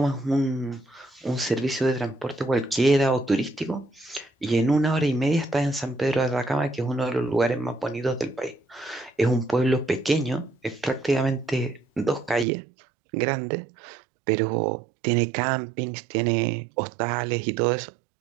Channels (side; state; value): left; drops out; at 12.5 s